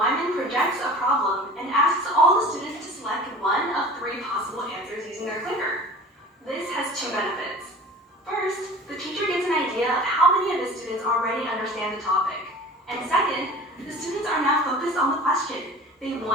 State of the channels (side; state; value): both; normal; correlation 0.41